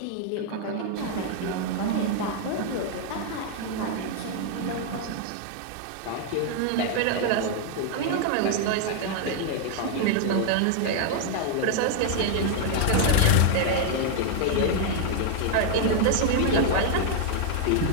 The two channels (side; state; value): both; different; correlation 0.00